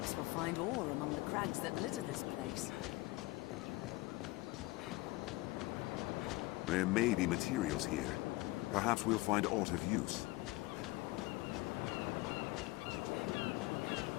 we'll find ore among the crags that litter this place. There may be materials here. Perhaps we'll find aught of use.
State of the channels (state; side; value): quieter; right; 21.1 dB